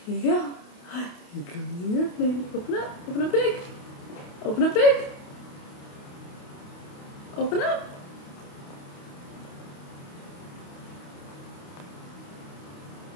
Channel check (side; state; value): right; late; 28 ms